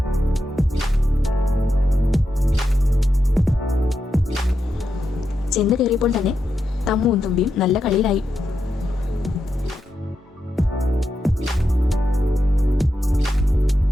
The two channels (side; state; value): both; normal; correlation 0.86